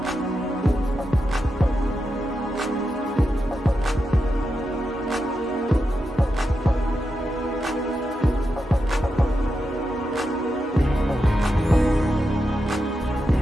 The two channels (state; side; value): normal; both; correlation 0.87